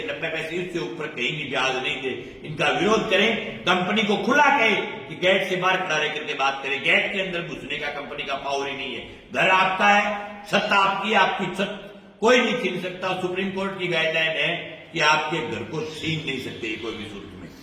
90 पैसे, इससे ऊपर कहीं भी ब्याज नहीं दे। इनका विरोध करें। कंपनी को खुला कहे कि गेट से बाहर खड़ा रह करके बात करें। गेट के अंदर घुसने का कंपनी का पावर ही नहीं है। घर आपका है, छत आपकी, आपकी छत कोई नहीं छीन सकता। सुप्रीम कोर्ट की गाइडलाइन है कि आपके घर को छीन नहीं सकते कोई भी सूरत में।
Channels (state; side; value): identical; both; correlation 1.00